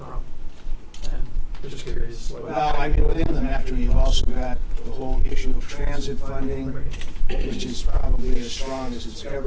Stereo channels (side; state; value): both; identical; correlation 1.00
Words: And I'm just curious. Well, I mean, within the metro, you've also got the whole issue of transit funding, which is probably as strong as it's